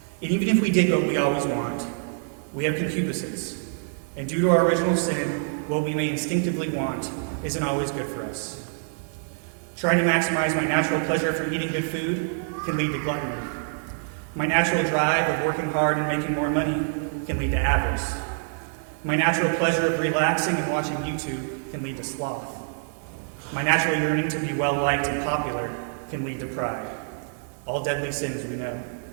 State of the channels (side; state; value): left; silent; digital silence